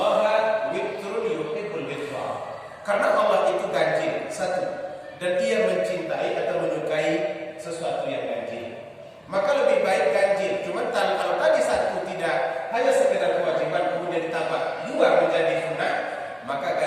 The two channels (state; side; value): identical; both; correlation 1.00